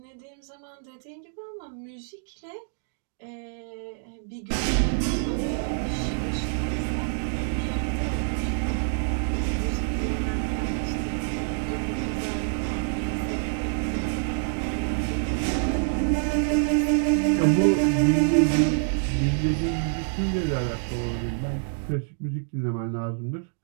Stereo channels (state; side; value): silent; left; digital silence